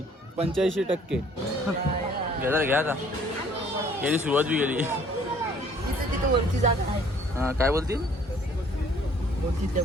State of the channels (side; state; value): both; normal; correlation 0.57